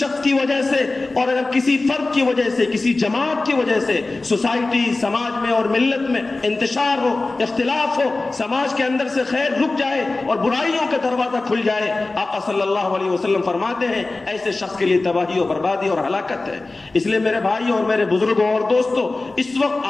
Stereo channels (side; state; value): right; quieter; 3.3 dB